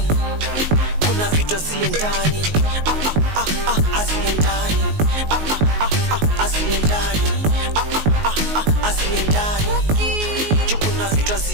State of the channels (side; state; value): left; late; 19 ms